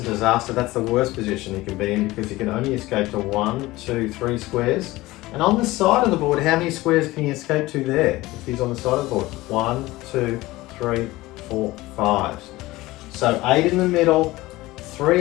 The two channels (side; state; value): right; quieter; 19.0 dB